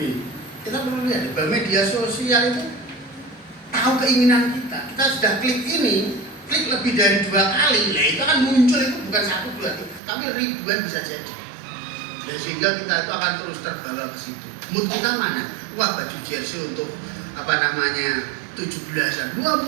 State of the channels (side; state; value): left; drops out; at 10.0 s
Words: Kita perlu lihat bahwa media sosial itu tahu keinginan kita. Kita sudah klik ini, klik lebih dari 2 kali, nah itu akan muncul itu bukan 1, 2, tapi ribuan bisa jadi. Dan sehingga kita itu akan terus terbawa ke situ. Mood kita mana? Wah, baju jersey untuk 17-an. Wah,